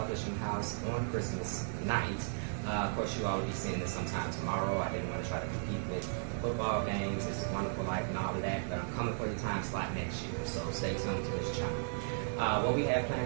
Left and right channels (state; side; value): silent; left; digital silence